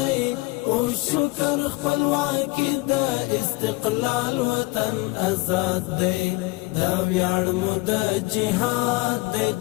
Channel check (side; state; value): right; quieter; 23.5 dB